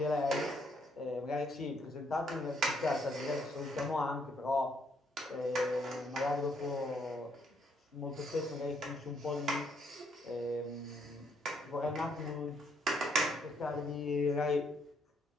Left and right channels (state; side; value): normal; both; correlation 0.71